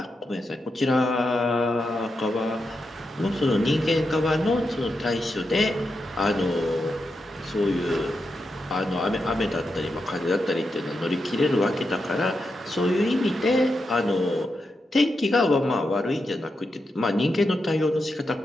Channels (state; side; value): normal; both; correlation 0.86